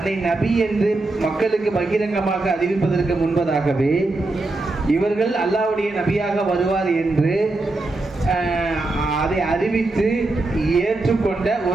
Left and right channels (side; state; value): left; quieter; 3.0 dB